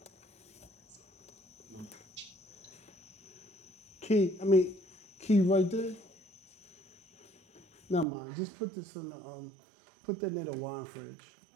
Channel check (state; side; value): drops out; left; at 8.1 s